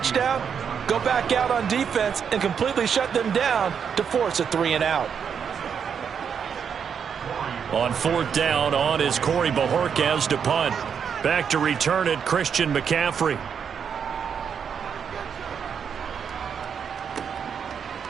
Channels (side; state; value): left; quieter; 7.2 dB